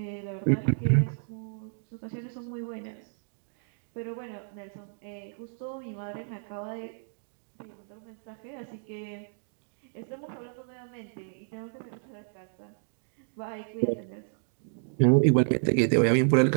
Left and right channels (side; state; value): left; silent; digital silence